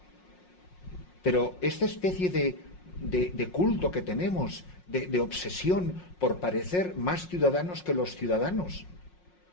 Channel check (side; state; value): right; late; 5.5 ms